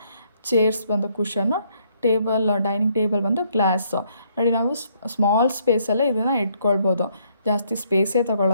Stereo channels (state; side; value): inverted; both; correlation -0.69